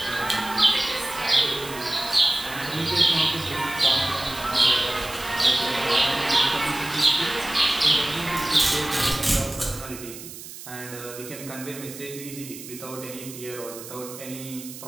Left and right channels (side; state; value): right; noise; hiss, 13 dB below the sound